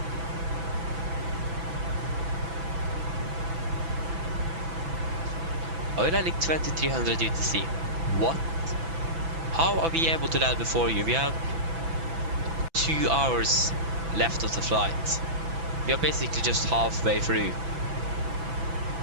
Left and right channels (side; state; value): left; late; 6.0 ms